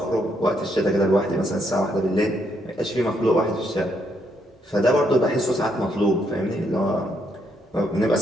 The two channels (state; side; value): normal; both; correlation 0.75